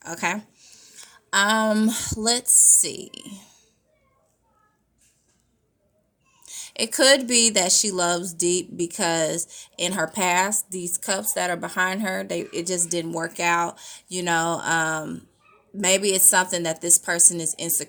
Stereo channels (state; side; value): identical; both; correlation 1.00